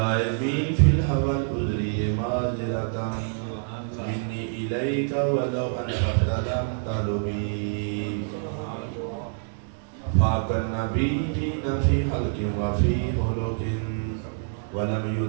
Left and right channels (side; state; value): left; silent; 61 dB below the other